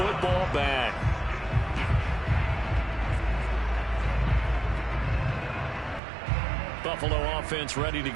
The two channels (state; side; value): drops out; left; at 6.0 s